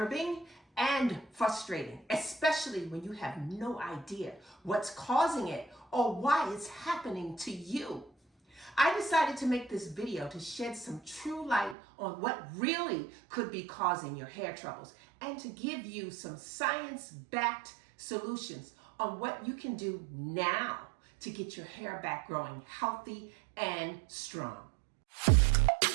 and frustrating, especially when you have no idea what's causing it or why it's happening to you. I decided to make this video to shed some true light on what really could be causing your hair troubles and to give you some science-backed solutions on what you can do now to get your hair back growing healthy and strong.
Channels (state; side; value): drops out; left; at 11.8 s